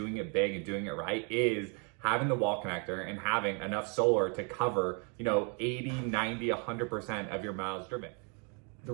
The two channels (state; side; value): quieter; left; 36.8 dB